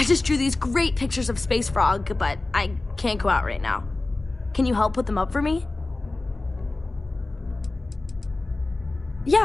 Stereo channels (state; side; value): quieter; right; 3.1 dB